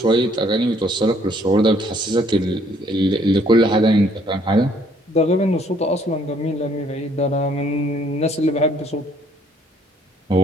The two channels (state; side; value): normal; both; correlation 0.63